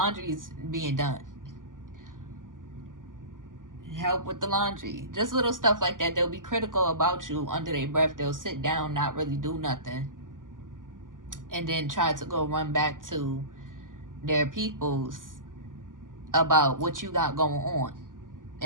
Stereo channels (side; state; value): left; late; 0.88 ms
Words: being done, help with the laundry. Just little stuff like that. They'll be critical about you under their breath. They'll sit down, not really do nothing, and then try to go run back to their peoples about what you got going on